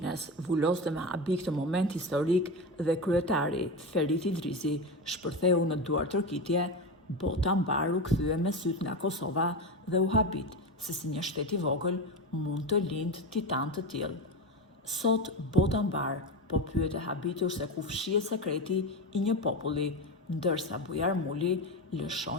vuloste me habi këtë moment historik dhe kryetari Ferit Idrisi shpërtheu në duar tërkitje, bota mbar u kthye me syt nga Kosova dhe u habit se si një shtet i vogël mund të lindë titan të tillë. Sot bota mbar po pyet e habitur se ku fshihet sekreti i një populli, ndërsa Bujar Muli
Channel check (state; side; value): normal; both; correlation 0.20